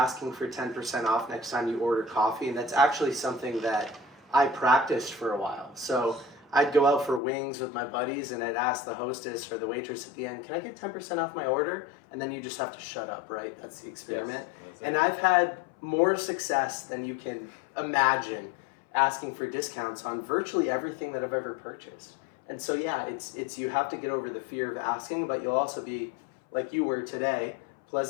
for 10% off next time you order coffee, and that's actually something that I practiced for a while. So I'd go out for wings with my buddies and I'd ask the hostess or the waitress at the end, can I get 10% off my order? And then you just have to shut up, right? That's the experiment. Yes, and I've had more success than you can imagine asking for discounts on virtually everything that I've ever purchased. And so yeah, it's you have to get over the fear of asking, but you'll also be, like you were today,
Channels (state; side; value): drops out; right; at 7.2 s